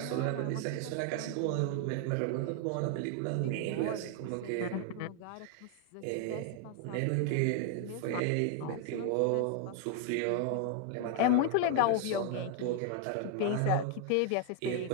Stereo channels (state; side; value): different; both; correlation 0.00